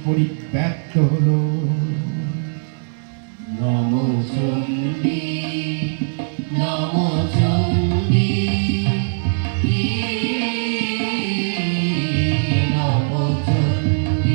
পরিব্যাপ্ত হল। নমো চণ্ডী নমো চণ্ডী নমো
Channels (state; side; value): silent; left; digital silence